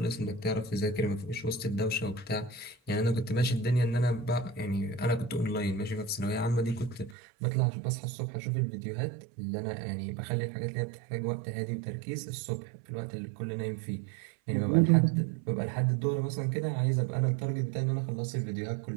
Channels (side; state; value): left; drops out; at 7.2 s